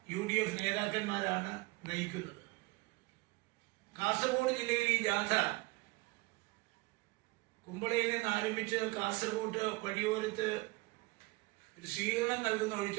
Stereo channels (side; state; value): left; quieter; 24.0 dB